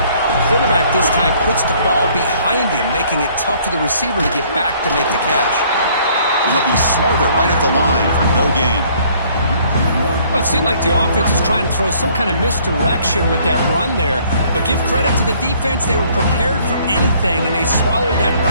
quarterback this time puts the ball behind him, making it tough for the receiver to get back to make the catch. He'll be smarter right at the line for no gain. Well, it seemed like the offense is trying to throw some kind of misdirection with that run there. But give credit to the defense. They were prepared for anything, and they swallowed that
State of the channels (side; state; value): both; inverted; correlation -0.60